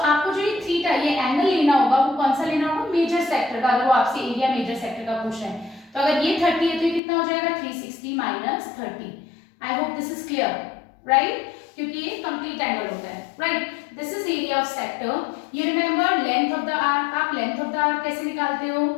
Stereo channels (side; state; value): right; drops out; at 7.0 s